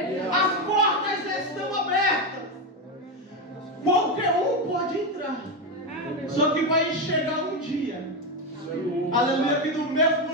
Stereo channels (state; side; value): normal; both; correlation 0.11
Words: as portas estão abertas, qualquer um pode entrar, só que vai chegar um dia, aleluia, que do